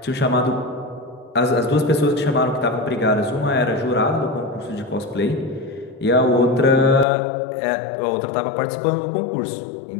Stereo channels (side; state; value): right; drops out; at 7.1 s